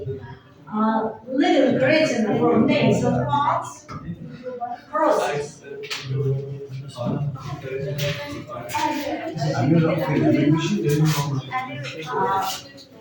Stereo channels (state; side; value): identical; both; correlation 1.00